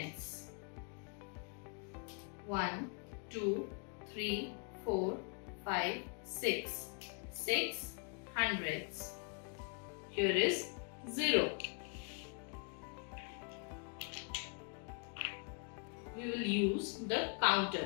1, 2, 3, 4, 5, 6. 6 hundredths. Here is 0. We will use the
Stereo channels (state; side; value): quieter; right; 39.6 dB